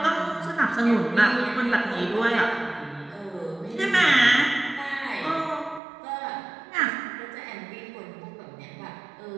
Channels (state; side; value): drops out; left; at 5.8 s